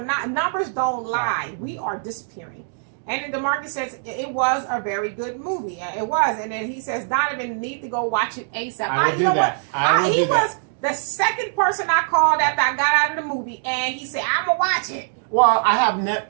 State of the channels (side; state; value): left; silent; digital silence